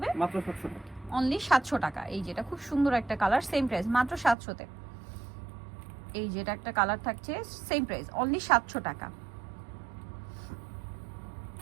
মাত্র 700 টাকা। অনলি 700 টাকা। এই যেটা খুব সুন্দর একটা কালার, সেম প্রাইস মাত্র 700 তে। এই যেটা একটা কালার থাকছে, সেম প্রাইস অনলি 700 টাকা।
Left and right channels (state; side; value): drops out; left; at 4.4 s